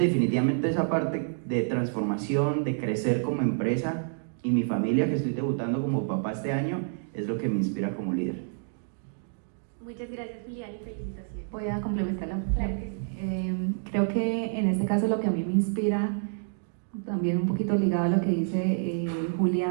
esa parte de transformación, de crecer como empresa, y mi familia, que estoy debutando como papá este año, es lo que me inspira como líder. Muchas gracias, Julián, y felicitaciones. Voy a complementarla. Claro que sí. Creo que en este caso lo que a mí me inspira, también un poquito ligado a lo que dice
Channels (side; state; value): left; silent; digital silence